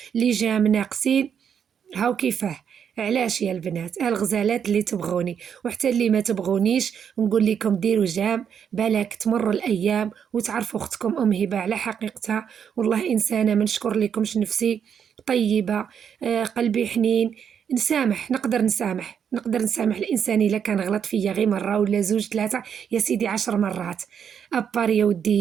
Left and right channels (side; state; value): left; quieter; 7.8 dB